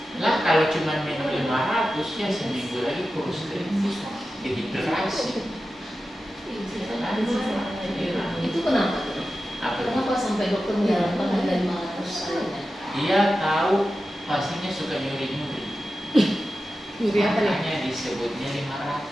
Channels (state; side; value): normal; both; correlation 0.93